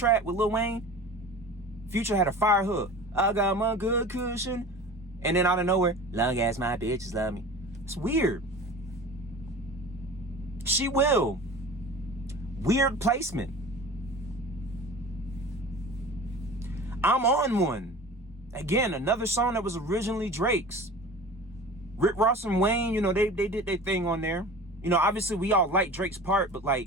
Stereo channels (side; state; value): both; normal; correlation 0.38